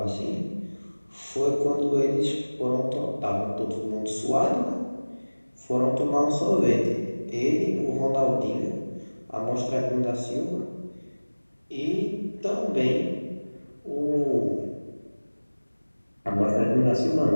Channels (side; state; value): both; inverted; correlation -1.00